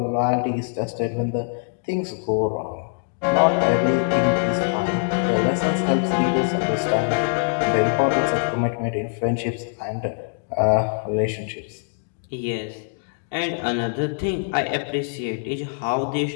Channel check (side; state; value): right; silent; digital silence